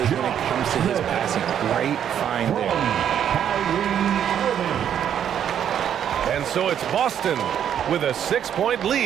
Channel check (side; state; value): left; quieter; 9.3 dB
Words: when it comes to his passing. Great find there. And so it's Boston with a 6-point